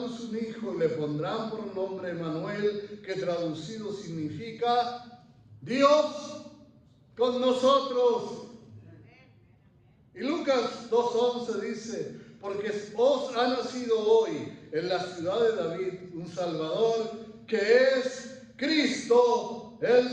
un hijo, y le pondrán por nombre Emmanuel, que traducido significa Dios con nosotros. Y Lucas 2:11 dice, porque os ha nacido hoy en la ciudad de David un Salvador, que es Cristo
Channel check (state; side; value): identical; both; correlation 1.00